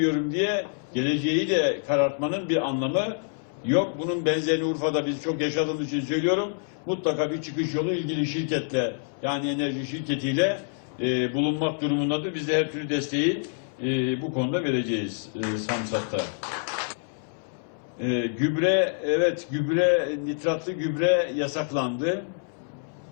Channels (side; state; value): right; silent; 60 dB below the other